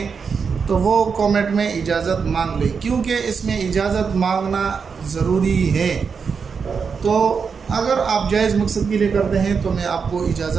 तो वो कमेंट में इजाज़त मांग लें, क्योंकि इसमें इजाज़त मांगना ज़रूरी है। तो अगर आप जायज़ मकसद के लिए करते हैं तो मैं आपको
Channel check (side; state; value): left; quieter; 5.8 dB